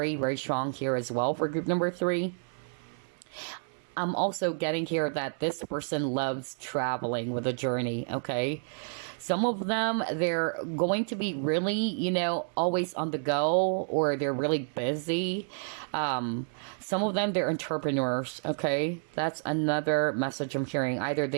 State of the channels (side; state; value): left; silent; digital silence